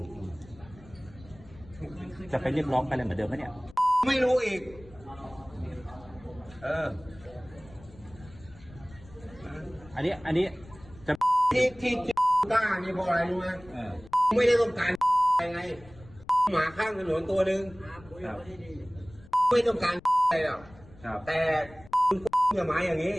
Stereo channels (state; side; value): noise; left; rumble, 22 dB below the sound